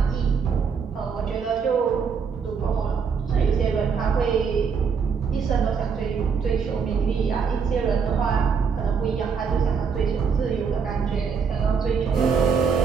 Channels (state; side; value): quieter; left; 6.1 dB